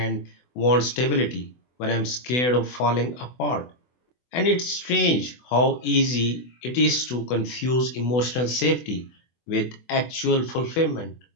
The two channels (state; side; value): late; right; 24 ms